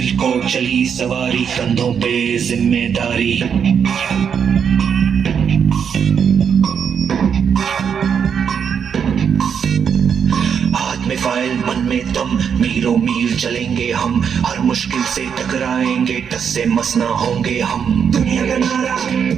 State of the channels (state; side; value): quieter; left; 7.3 dB